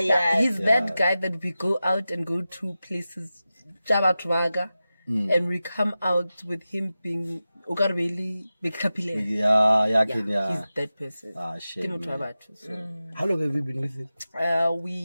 He's that guy that we go out and go to places, Jabatwaga, and we come out with him being Ukarbeli Bekapile. Yeah. He's that person. Shame. So. How long have you been with him?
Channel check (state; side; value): inverted; both; correlation -0.94